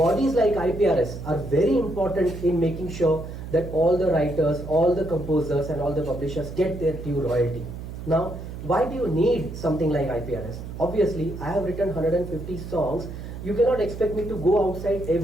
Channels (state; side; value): noise; right; hum, 10 dB below the sound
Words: like IPRS are very important in making sure that all the writers, all the composers and all the publishers get their due royalty. Now, why do you need something like IPRS? Obviously, I have written 150 songs. You cannot expect me to go outside